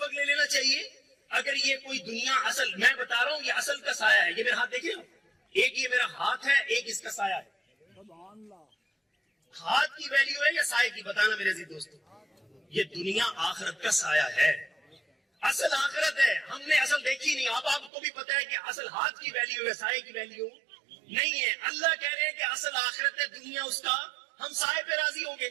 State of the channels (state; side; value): drops out; left; at 17.9 s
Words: لے لینا چاہیے. اگر یہ کوئی دنیا اصل, میں بتا رہا ہوں یہ اصل کا سایہ ہے, یہ میرے ہاتھ دیکھ رہے ہو, ایک یہ میرا ہاتھ ہے، ایک اس کا سایہ ہے. ہاتھ کی ویلیو ہے یا سائے کی؟ بتانا میرے عزیز دوستو. یہ دنیا آخرت کا سایہ ہے، اصل آخرت ہے. ہم نے اصل دیکھی نہیں. آپ کو بھی پتا ہے کہ اصل ہاتھ کی ویلیو ہے، سائے کی ویلیو نہیں ہے. اللہ کہہ رہے ہیں کہ اصل آخرت ہے دنیا، اس کا ہم سائے پہ راضی ہوں گے